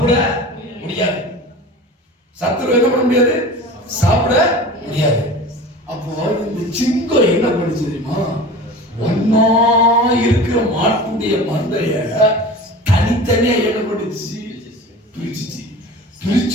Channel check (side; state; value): both; normal; correlation 0.36